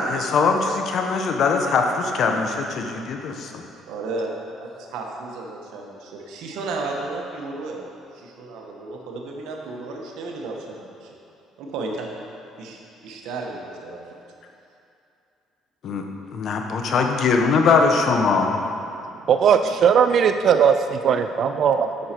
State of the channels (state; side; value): normal; both; correlation 0.61